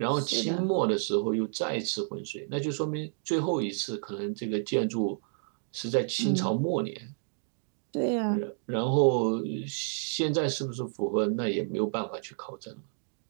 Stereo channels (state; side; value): silent; left; digital silence